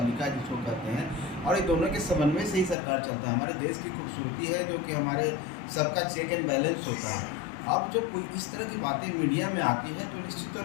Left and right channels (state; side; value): drops out; right; at 2.8 s